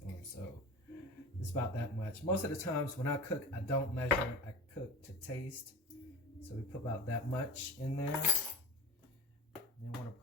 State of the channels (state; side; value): normal; both; correlation 0.31